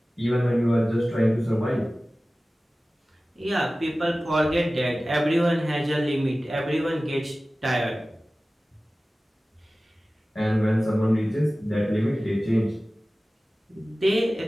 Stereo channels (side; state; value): both; normal; correlation 0.97